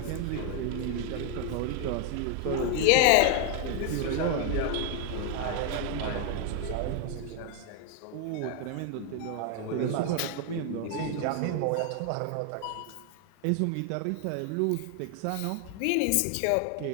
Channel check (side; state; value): both; different; correlation 0.00